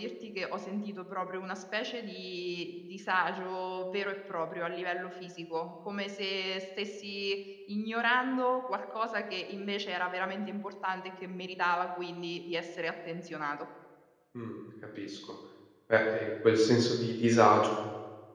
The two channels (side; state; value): both; identical; correlation 1.00